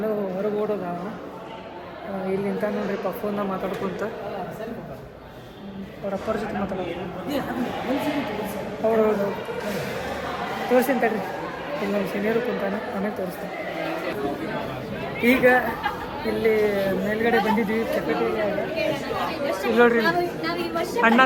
ಹೊರಗೆ ಓಡೋದ. ಇಲ್ಲಿ ನಿಂತ ನೋಡ್ರಿ ಫೋನ್ನ ಮಾತಾಡ್ಕೊಂತ ಅವ್ರ ಅಪ್ಪರ ಜೊತೆ ಮಾತಾಡೋದು. ಹೌದು ತೋರಿಸ್ತೀನಿ ತಡ್ರಿ. ಇಲ್ಲಿ ನಮ್ಮ ಸೀನಿಯರು ಕುಂತಾನೆ, ಆಮೇಲೆ ತೋರಿಸ್ತೀನಿ. ಈಗ ಇಲ್ಲಿ ಮೇಲ್ಗಡೆ ಬಂದಿದ್ವಿ ಚಪಾತಿ. ಇಲ್ಲಿ ನೋಡ್ರಿ ಅಣ್ಣ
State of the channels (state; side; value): identical; both; correlation 1.00